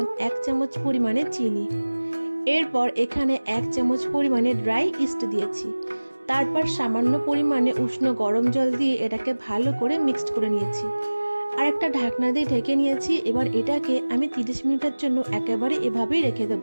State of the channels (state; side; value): inverted; both; correlation -1.00